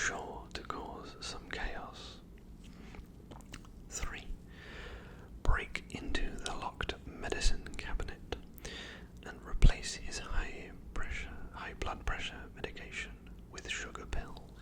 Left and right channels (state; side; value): identical; both; correlation 1.00